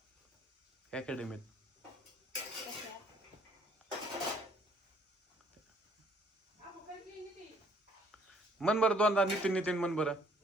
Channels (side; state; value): both; normal; correlation 0.62